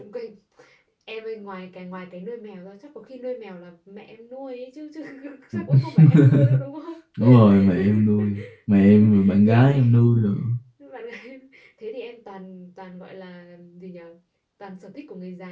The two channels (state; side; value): identical; both; correlation 1.00